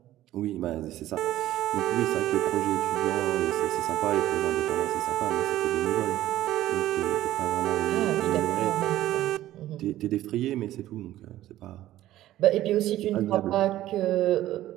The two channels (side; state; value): left; quieter; 14.2 dB